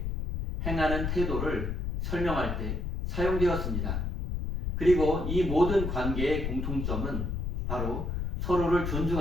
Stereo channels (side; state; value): left; noise; rumble, 2 dB below the sound